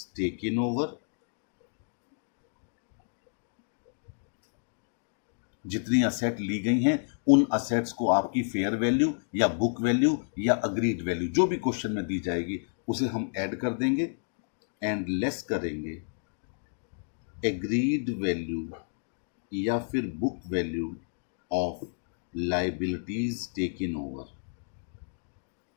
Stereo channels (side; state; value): right; silent; digital silence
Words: taken over. जितनी असेट ली गई हैं उन असेट्स को आपकी फेयर वैल्यू या बुक वैल्यू या अग्रीड वैल्यू जो भी क्वेश्चन में दी जाएगी उसे हम ऐड कर देंगे एंड लेस करेंगे एग्रीड वैल्यू या फिर book value of liabilities taken over.